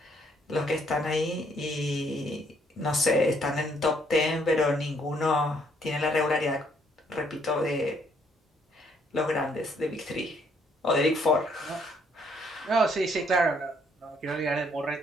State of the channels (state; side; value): normal; both; correlation 0.68